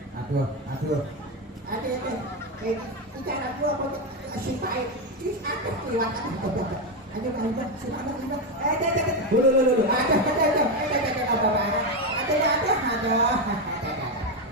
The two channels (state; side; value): normal; both; correlation 0.09